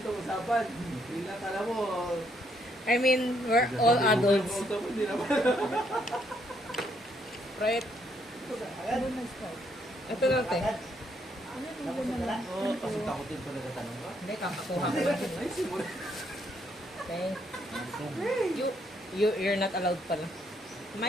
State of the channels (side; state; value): both; normal; correlation 0.72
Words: usapan. Bigla kala mo, I mean, we're all adults. Auto mo, hindi naman. Right? Ano na stop? Ito lang, te. Ano yung na lang? Oo, kasi takutin pa nagtatanong ka. Hindi, kakakuha ko lang. Ay, simula. Okay. You're not allowed pala.